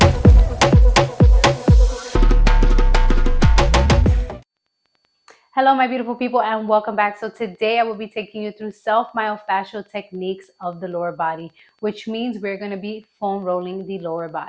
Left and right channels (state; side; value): identical; both; correlation 1.00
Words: Hello, my beautiful people, and welcome back. So today I will be taking you through self-myofascial techniques of the lower body, which means we're going to be foam rolling the lower